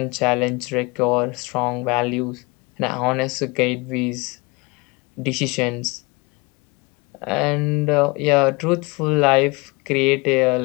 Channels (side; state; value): right; quieter; 26.8 dB